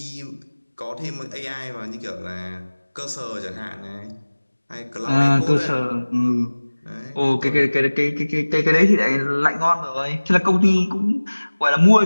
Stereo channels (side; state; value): both; inverted; correlation -1.00